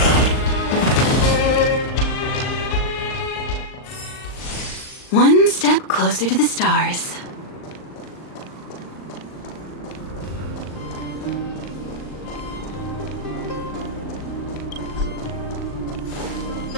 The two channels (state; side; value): late; right; 39 ms